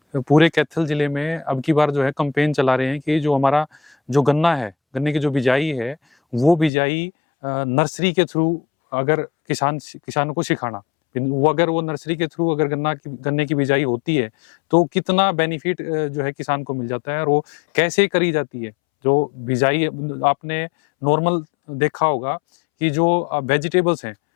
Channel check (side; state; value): right; drops out; at 6.7 s